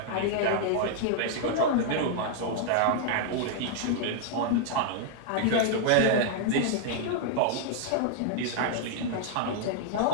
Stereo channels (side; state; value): both; different; correlation 0.00